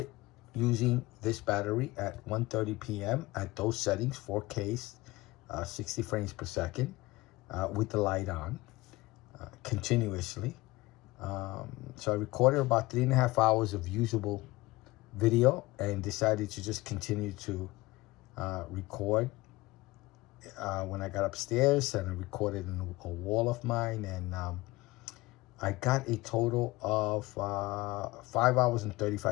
using this battery at 1:30 p.m. at those settings, 4K, 60 frames per second, with the light on, continuously. So I recorded about 3.5 hours of usable video and decided to just continue to record when I got upstairs, and I recorded in a wall of mine, and I got a total of 5 hours and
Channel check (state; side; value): quieter; right; 20.6 dB